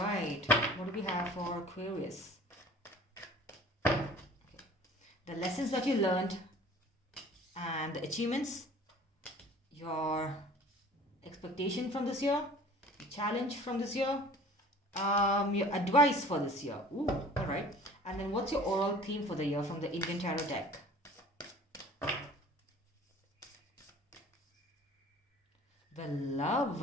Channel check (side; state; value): both; normal; correlation 0.46